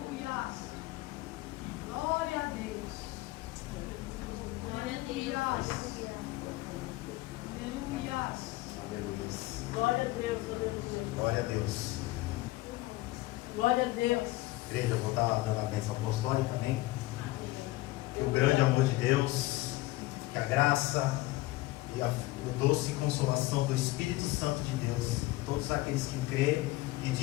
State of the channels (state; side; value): quieter; right; 19.1 dB